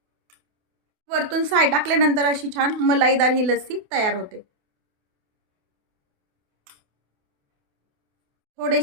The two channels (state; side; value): late; left; 28 ms